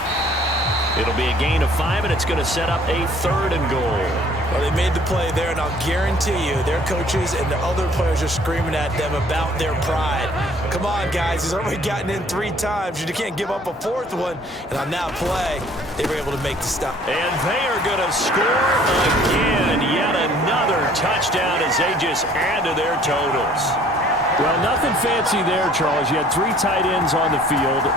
It'll be a gain of 5, and it's going to set up a 3rd and goal. Well, they made the play there, and I'll guarantee you their coaches and the other players are screaming at them about their pride. Come on, guys. He's already gotten in 3 times. You can't give up a 4th one. And on that play, they were able to make the stop. And they are going to score again. Yet another touchdown as they just add to their totals. Well, nothing fancy there, Charles. You had 3 tight ends on the field.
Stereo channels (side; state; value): both; normal; correlation 0.56